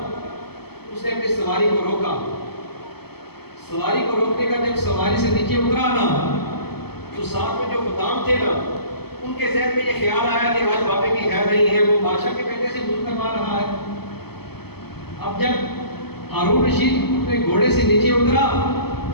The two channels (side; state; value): right; late; 0.96 ms